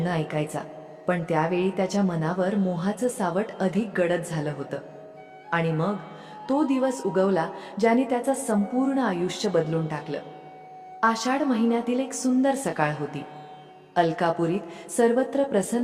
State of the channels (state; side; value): identical; both; correlation 1.00